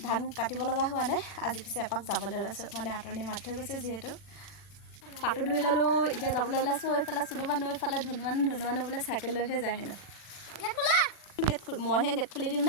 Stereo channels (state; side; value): late; right; 39 ms